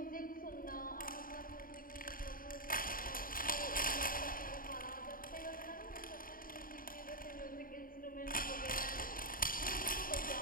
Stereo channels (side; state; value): right; late; 0.41 ms